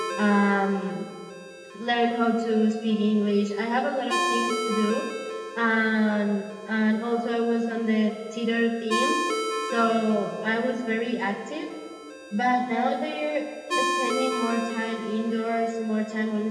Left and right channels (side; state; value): both; identical; correlation 1.00